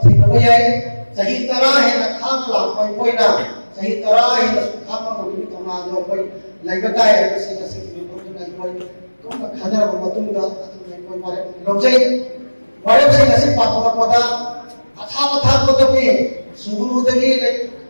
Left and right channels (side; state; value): both; inverted; correlation -1.00